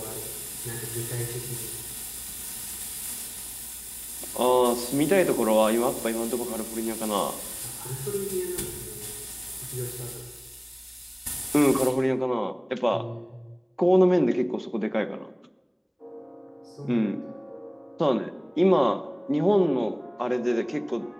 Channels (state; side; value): identical; both; correlation 1.00